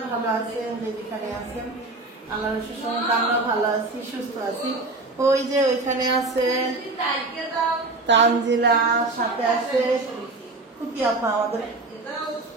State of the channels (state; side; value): quieter; left; 3.2 dB